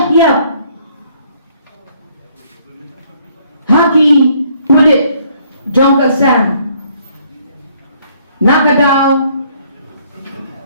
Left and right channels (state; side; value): inverted; both; correlation -0.65